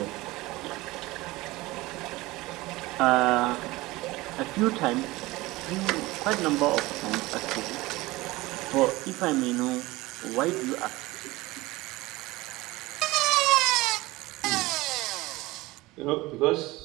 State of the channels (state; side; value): quieter; left; 20.2 dB